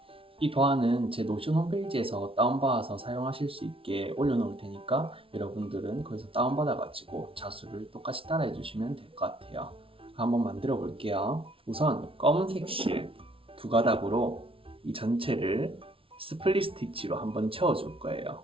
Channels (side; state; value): left; late; 0.26 ms